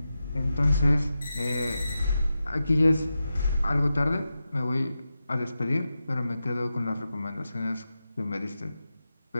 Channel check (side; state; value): both; inverted; correlation -0.91